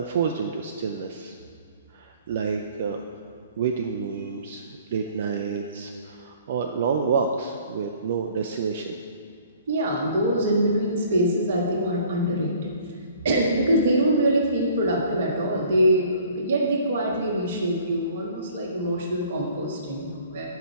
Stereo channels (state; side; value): inverted; both; correlation -0.54